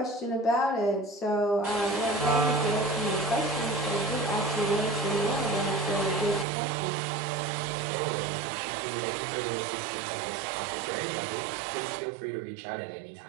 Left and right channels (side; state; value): left; drops out; at 6.5 s